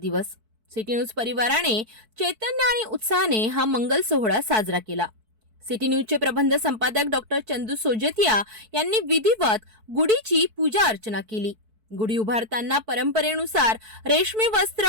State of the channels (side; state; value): left; late; 4.6 ms